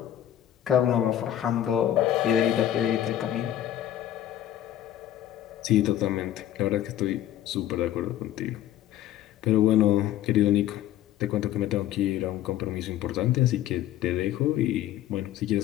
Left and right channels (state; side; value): quieter; right; 12.0 dB